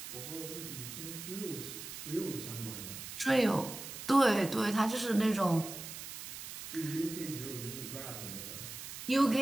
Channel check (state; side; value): noise; right; hiss, 9 dB below the sound